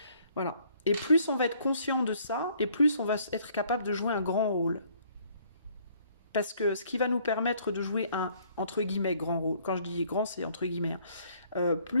Voilà. Et plus on va être conscient de ça, et plus on va être capable de jouer un grand rôle. Parce que ce qui va nous permettre de jouer un, entre guillemets, grand rôle, quand je dis grand, c'est entre guillemets,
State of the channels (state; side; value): inverted; both; correlation -0.62